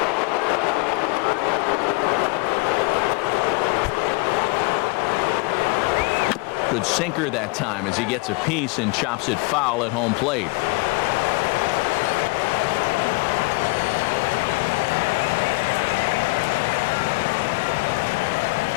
Good sinker that time as he gets a piece and chops it foul at home plate.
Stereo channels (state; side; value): quieter; right; 26.7 dB